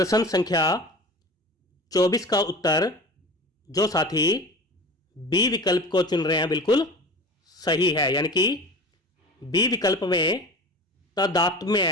संख्या 24 का उत्तर जो साथी बी विकल्प को चुन रहे हैं बिल्कुल सही है, यानी कि बी विकल्प में तदात्म्य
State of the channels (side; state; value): both; normal; correlation 0.35